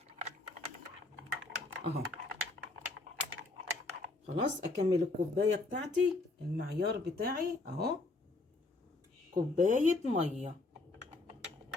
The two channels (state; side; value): quieter; right; 3.2 dB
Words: اهو. خلاص، اكمل الكوبايه بتاعتي المعيار بتاعي اهو، كوبايه ميه،